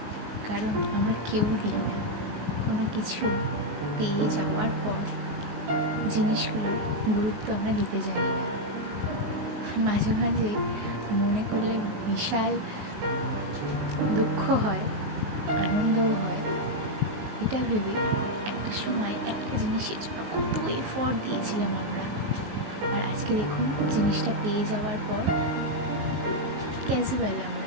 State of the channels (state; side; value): late; left; 19 ms